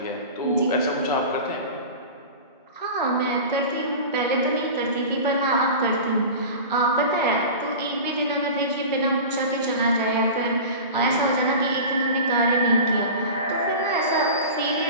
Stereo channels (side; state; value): both; inverted; correlation -0.33